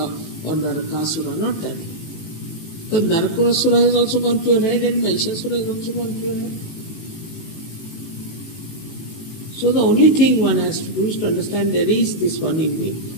or Narakasura, not that. Because Narakasura has also gone to your head and Mahishasura has also gone to your head. So the only thing one has to do is to understand there is this one in me.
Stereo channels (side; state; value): right; late; 18 ms